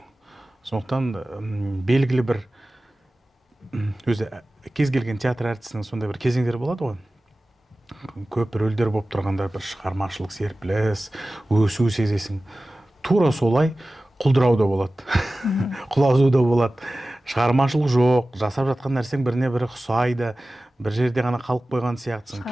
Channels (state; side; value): normal; both; correlation 0.96